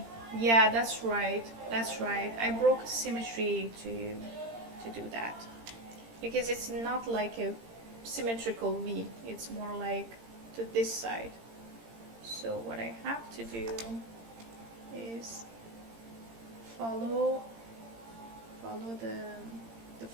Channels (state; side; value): late; left; 18 ms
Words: Yeah, that's right. That's right. I broke the symmetry to do that because it's not like a symmetrical V. It's more like to this side. So what I have to do is follow the